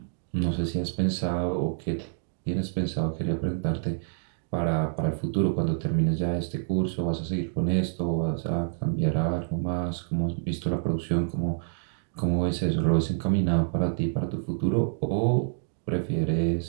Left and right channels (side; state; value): left; silent; digital silence